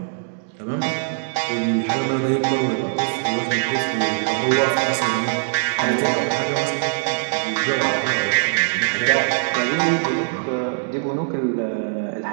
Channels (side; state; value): left; silent; digital silence